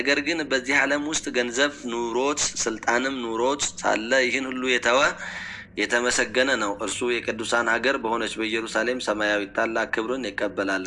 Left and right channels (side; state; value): both; identical; correlation 1.00